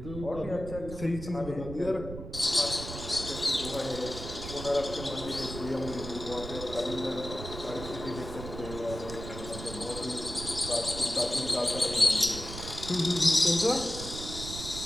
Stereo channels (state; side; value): noise; right; rumble, 9 dB below the sound